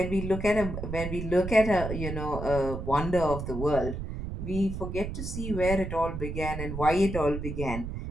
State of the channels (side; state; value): right; noise; rumble, 6 dB below the sound